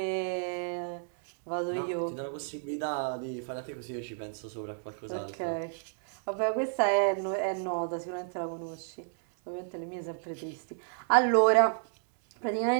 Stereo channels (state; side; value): silent; left; 57 dB below the other